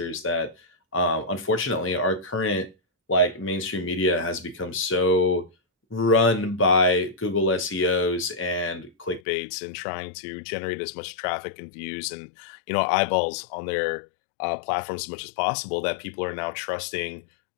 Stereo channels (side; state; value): right; drops out; at 9.2 s